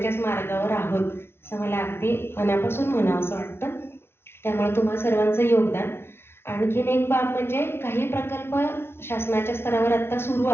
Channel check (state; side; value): late; right; 0.12 ms